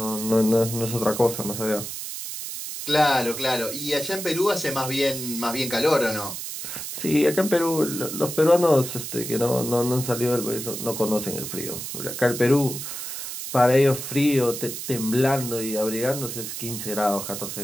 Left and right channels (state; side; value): noise; right; hiss, 7 dB below the sound